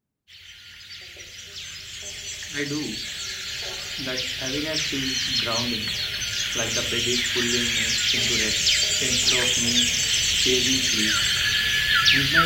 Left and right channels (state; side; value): identical; both; correlation 1.00